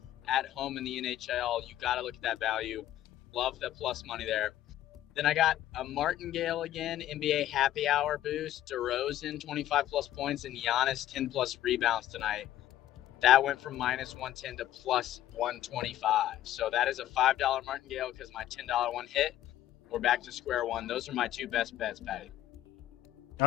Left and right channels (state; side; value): quieter; right; 13.0 dB